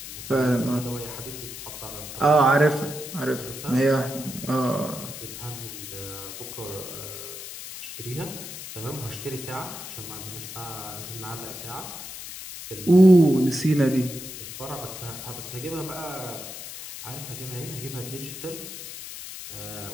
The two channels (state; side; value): noise; left; hiss, 10 dB below the sound